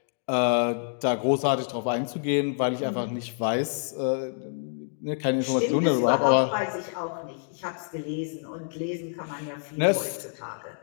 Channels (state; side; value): silent; right; digital silence